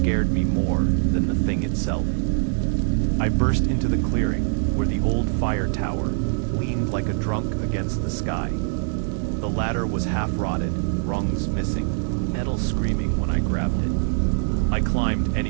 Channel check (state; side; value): silent; left; digital silence